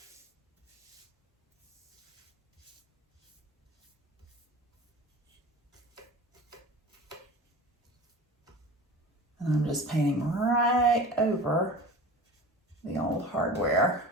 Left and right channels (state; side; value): normal; both; correlation 0.37